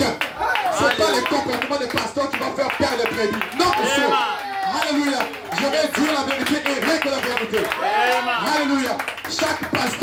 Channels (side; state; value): both; identical; correlation 1.00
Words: Ce n'est pas les comportements des pasteurs qui vont faire perdre les prédits. Non, monsieur. Alléluia. Je vais dire la vérité et rien que la vérité. Alléluia. Chaque